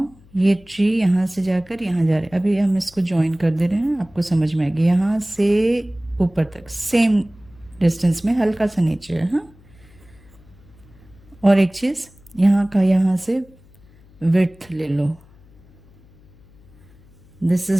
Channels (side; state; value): left; noise; hum, 27 dB below the sound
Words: ये ट्री यहाँ से जाकर यहाँ जा रहे हैं। अभी हम इसको ज्वाइन कर दे रहे हैं, आपको समझ में आएगी। यहाँ से ऊपर तक सेम डिस्टेंस में, हल्का सा नीचे है। हाँ, और एक चीज़, यहाँ का यहाँ से विड्थ ले लो। This